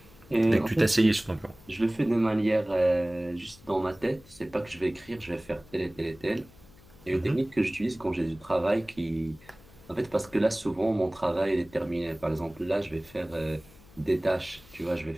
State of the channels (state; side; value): noise; left; hum, 24 dB below the sound